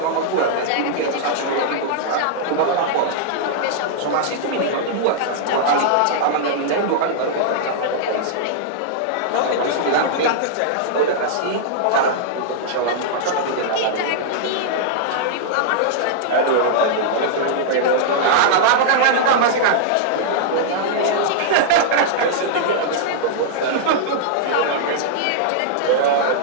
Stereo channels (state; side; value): different; both; correlation -0.01